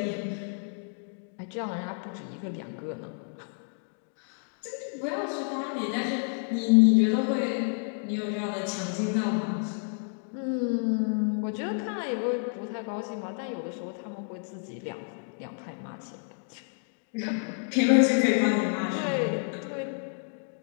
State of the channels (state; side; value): silent; right; 56 dB below the other